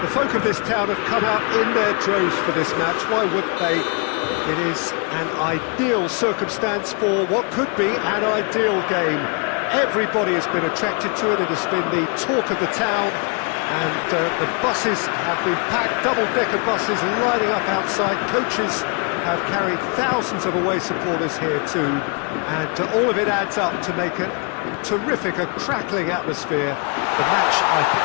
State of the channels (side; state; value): right; quieter; 36.3 dB